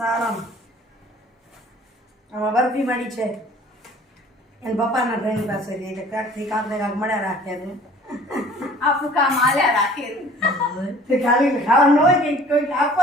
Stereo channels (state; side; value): normal; both; correlation 0.50